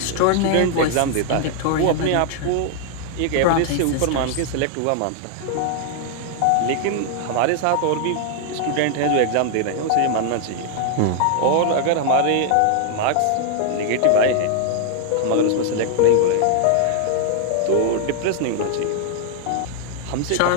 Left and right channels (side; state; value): both; different; correlation 0.00